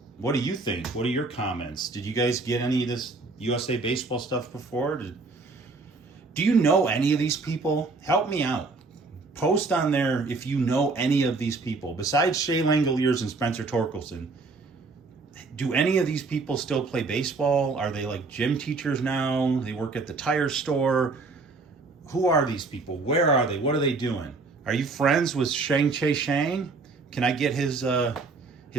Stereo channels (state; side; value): quieter; left; 3.8 dB